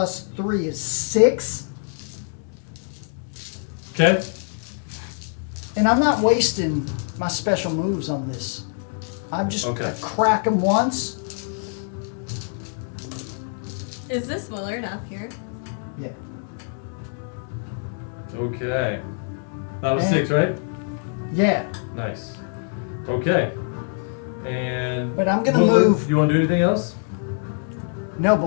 3 is 6. Okay. And I'm not wasting my special moves on this. I'm just Okay. gonna crack him once. Is this Willard up here? Yeah. Okay. That was And- 6, right? Yeah. Nice. Okay. And. But I'm gonna what- move- You want to do anything else? No,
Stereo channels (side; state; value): right; silent; 62 dB below the other